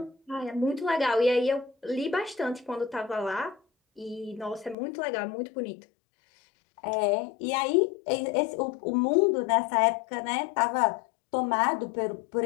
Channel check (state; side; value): drops out; right; at 4.8 s